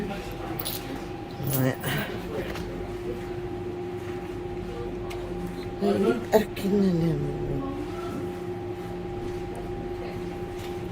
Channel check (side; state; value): both; identical; correlation 1.00